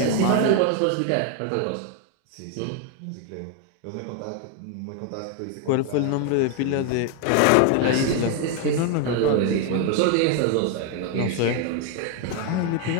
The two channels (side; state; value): both; different; correlation 0.01